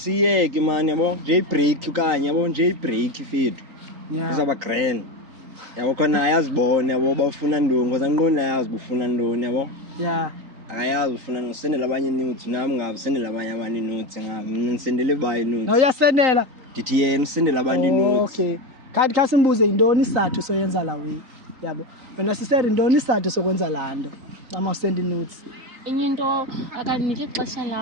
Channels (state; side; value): late; left; 3.9 ms